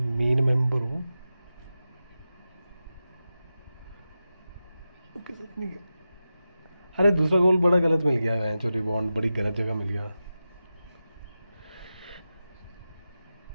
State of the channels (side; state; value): both; inverted; correlation -0.92